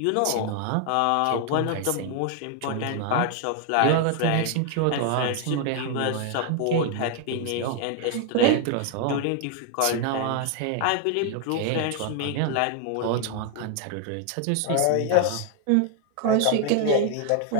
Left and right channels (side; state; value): both; different; correlation 0.00